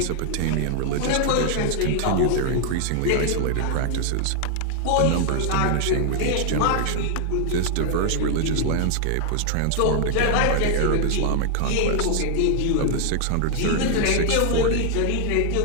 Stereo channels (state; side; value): different; both; correlation 0.00